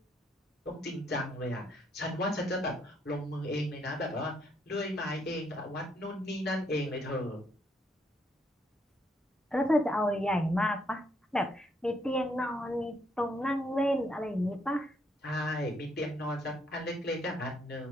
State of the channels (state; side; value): normal; both; correlation 0.73